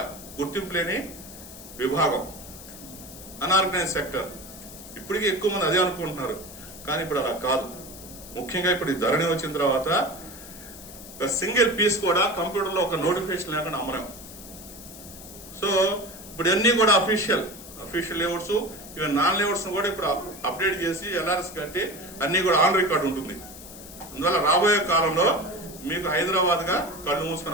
గుర్తింపు లేని విభాగం, అన్ఆర్గనైజ్ సెక్టర్. ఇప్పటికీ ఎక్కువ మంది అదే అనుకుంటున్నారు, కానీ ఇప్పుడు అలా కాదు. ముఖ్యంగా ఇప్పుడు ఈ ధరణి వచ్చిన తర్వాత ఒక సింగిల్ పీస్ కూడా కంప్యూటర్ లో ఒక నోటిఫికేషన్ లేకుండా అమ్మలేం. సో ఇప్పుడు అన్ని కూడా official layouts, even non layouts కూడా ఇప్పుడు అప్డేట్ చేసి ఎల్ఆర్ఎస్ కట్టి అన్ని కూడా ఆన్ రికార్డ్ ఉంటుంది. అందువల్ల రాబోయే కాలంలో మీకు హైదరాబాద్ గా కళ్ళు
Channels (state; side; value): noise; left; hiss, 15 dB below the sound